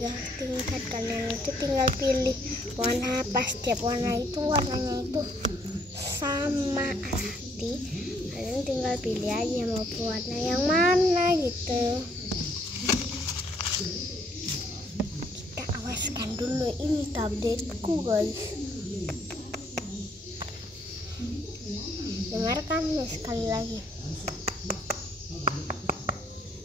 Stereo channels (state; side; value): normal; both; correlation 0.66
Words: tingkat. Kalian itu tinggal pilih warna, pas setiap warna itu warnanya itu sama. Nanti kalian tinggal pilih aja mau warna yang mana gitu. Kita awaskan dulu ini tabletku guys. Dengarkan nih sekali lagi.